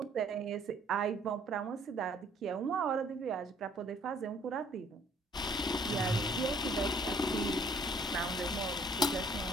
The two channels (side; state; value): both; normal; correlation 0.59